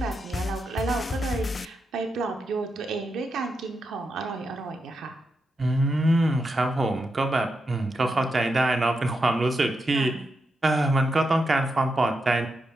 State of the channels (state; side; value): normal; both; correlation 0.86